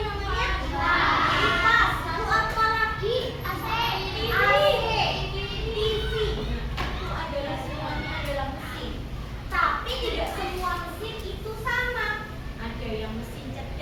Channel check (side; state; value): both; identical; correlation 1.00